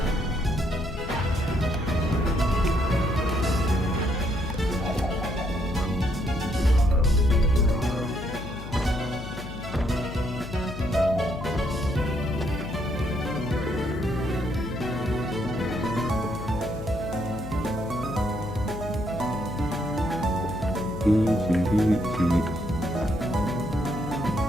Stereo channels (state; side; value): noise; left; hum, 11 dB below the sound